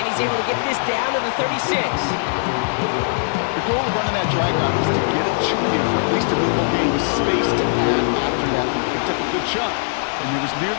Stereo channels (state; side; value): silent; right; 65 dB below the other